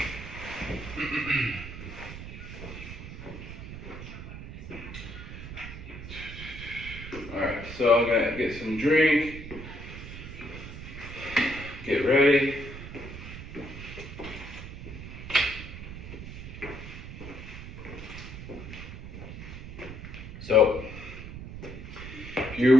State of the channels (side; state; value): right; noise; rumble, 10 dB below the sound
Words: Alright, so I'm gonna get some drink, get ready. So, if